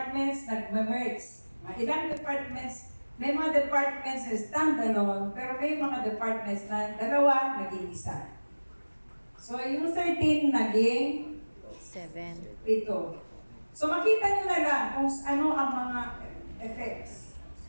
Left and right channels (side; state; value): both; inverted; correlation -1.00